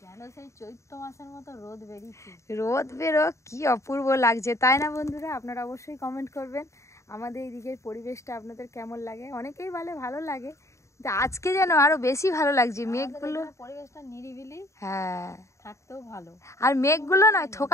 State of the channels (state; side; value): late; right; 0.14 ms